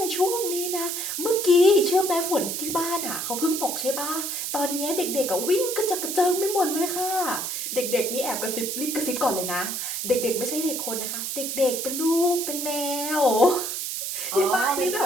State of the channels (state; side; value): noise; right; hiss, 3 dB below the sound